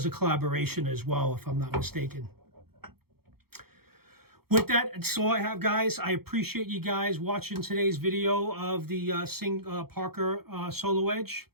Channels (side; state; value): left; late; 0.95 ms